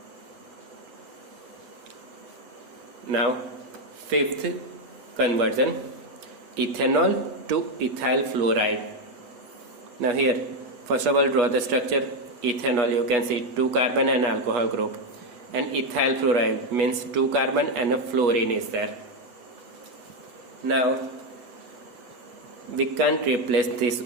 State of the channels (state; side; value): late; left; 8.3 ms